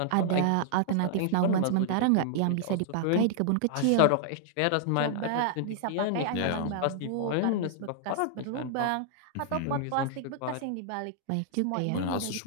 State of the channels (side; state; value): both; different; correlation -0.01